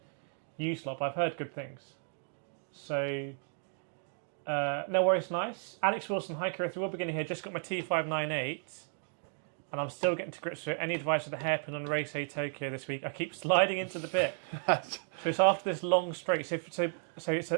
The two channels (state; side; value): silent; left; digital silence